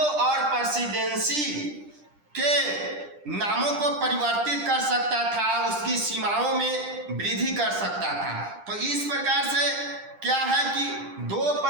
और प्रेसिडेंसी के नामों को परिवर्तित कर सकता था, उसकी सीमाओं में वृद्धि कर सकता था। तो इस प्रकार से क्या है कि दो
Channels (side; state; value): left; late; 10 ms